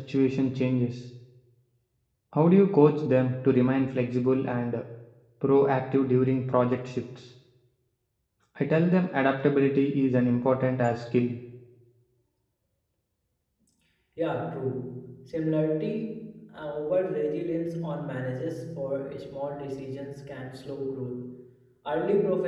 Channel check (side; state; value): both; identical; correlation 1.00